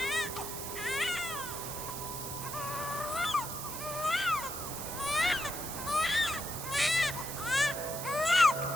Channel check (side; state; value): right; noise; hiss, 7 dB below the sound